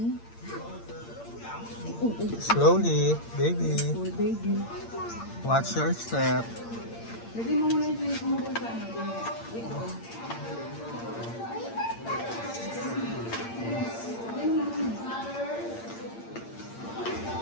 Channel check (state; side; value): late; right; 8.7 ms